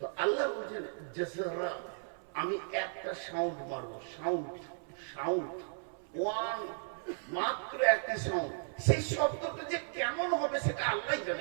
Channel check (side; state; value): left; silent; 54 dB below the other